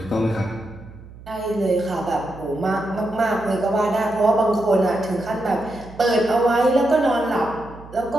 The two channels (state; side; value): noise; right; hum, 18 dB below the sound